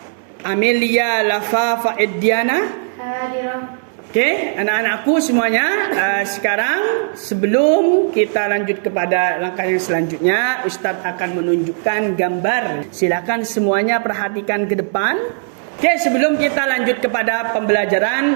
Amelia Lafa Ediana. Hadirah. Oke, anak-anakku semuanya, sekarang sebelum kita lanjut kepada langkah yang selanjutnya, Ustadz akan menunjukkan gambar. Silakan semuanya perhatikan ke depan. Oke, sebelum kita lanjut kepada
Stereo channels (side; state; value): left; silent; digital silence